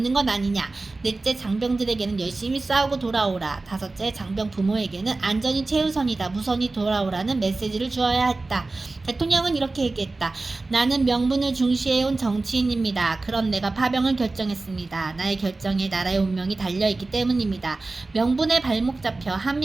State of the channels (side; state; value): left; quieter; 3.4 dB